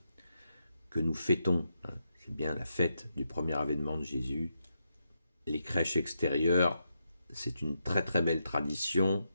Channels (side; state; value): both; inverted; correlation -0.83